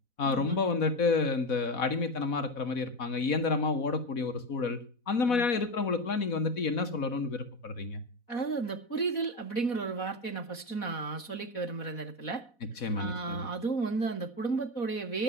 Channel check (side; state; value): right; late; 4.1 ms